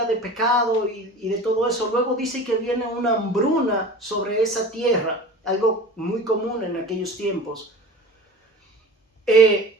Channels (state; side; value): normal; both; correlation 0.38